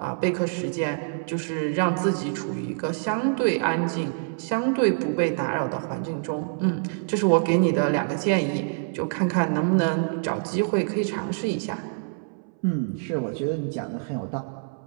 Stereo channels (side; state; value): left; silent; 61 dB below the other